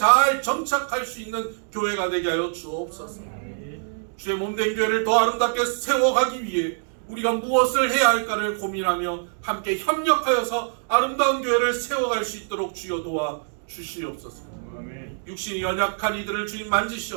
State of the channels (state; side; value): silent; left; digital silence